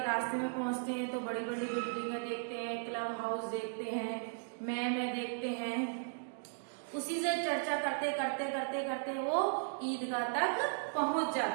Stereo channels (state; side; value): silent; left; digital silence